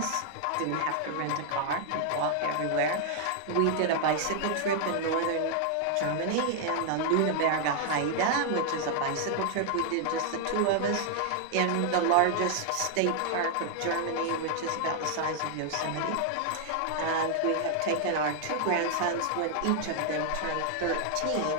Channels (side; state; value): both; different; correlation 0.00